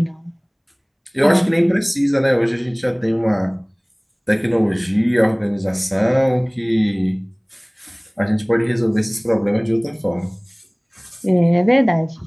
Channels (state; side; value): identical; both; correlation 1.00